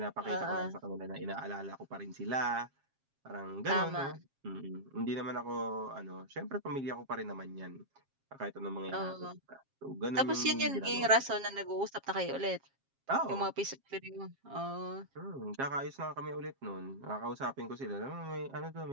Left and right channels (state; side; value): late; left; 7.4 ms